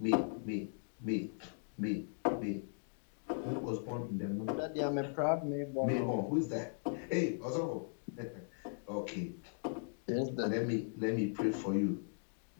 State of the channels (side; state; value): right; silent; digital silence